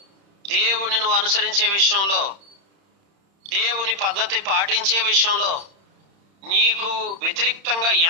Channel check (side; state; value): left; late; 31 ms